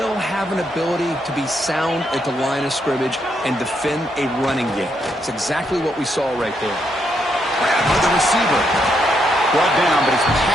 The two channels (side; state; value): both; normal; correlation 0.77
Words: have an ability to be sound at the line of scrimmage and defend a running game. It's exactly what we saw right there. Grab by the receiver. Brought down, but it's